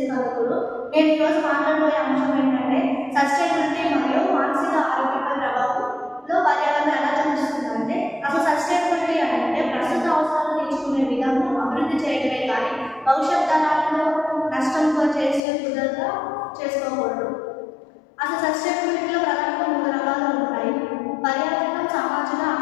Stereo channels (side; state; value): right; drops out; at 15.4 s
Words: Kalakuru. నేను ఈరోజు మాట్లాడబోయే అంశం ఏంటంటే sustainability మరియు మానసిక ఆరోగ్యంపై ప్రభావంలో పర్యావరణం ఎలా చూపిస్తుందంటే అసలు సస్టైనబిలిటీ అంటే ప్రస్తుత అవసరాలు తీర్చుకునే విధానం అభివృద్ధి చేయడమే కానీ భవిష్యత్ తరాలను నష్టంతో చేసే కుదరగా చేసుకోకూడదు. అసలు సస్టైనబిలిటీలో ప్రధానంగా 3 రకాలు ఉంటాయి. పర్యావరణం, సామాజిక,